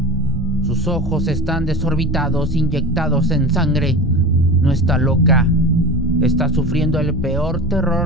Sus ojos están desorbitados, inyectados en sangre. No está loca. Está sufriendo el peor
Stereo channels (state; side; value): normal; both; correlation 0.31